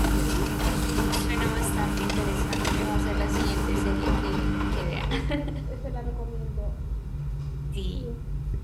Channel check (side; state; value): both; identical; correlation 1.00